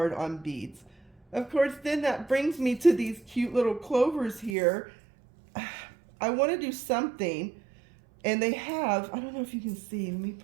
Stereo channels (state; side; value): drops out; left; at 4.5 s